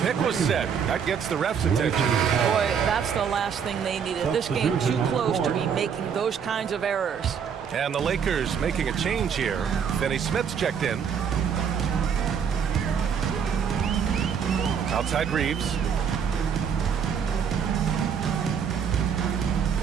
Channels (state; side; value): quieter; left; 7.2 dB